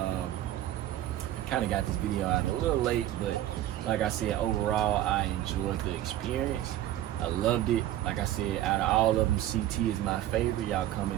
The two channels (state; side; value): quieter; left; 13.2 dB